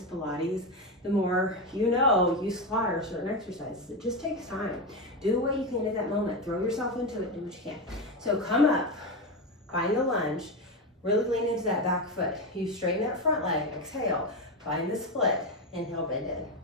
Pilates, the more you know you squat or certain exercises. It just takes time. Do what you can at that moment. Throw yourself into it, do what you can. So come up, find the lunge, really lean into that back foot. You straighten that front leg, exhale, find the split, inhale, bend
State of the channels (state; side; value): normal; both; correlation 0.14